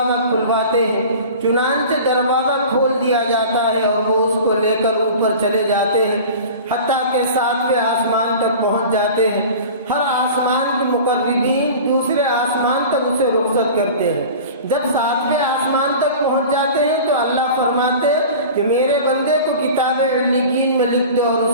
کھلواتے ہیں، چنانچہ دروازہ کھول دیا جاتا ہے اور وہ اس کو لے کر اوپر چلے جاتے ہیں حتیٰ کہ 7ویں آسمان تک پہنچ جاتے ہیں۔ ہر آسمان کے مقربین دوسرے آسمان تک اسے رخصت کرتے ہیں۔ جب 7ویں آسمان تک پہنچ جاتے ہیں تو اللہ فرماتے ہیں کہ میرے بندے کو کتاب علیین میں لکھ دو اور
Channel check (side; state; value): both; inverted; correlation -0.38